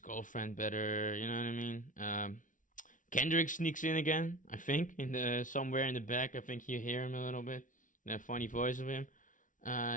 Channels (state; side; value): late; right; 0.38 ms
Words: better, you know what I mean? Kendrick sneaks in again, I think, somewhere in the back. I think you hear him a little bit, that funny voice of him.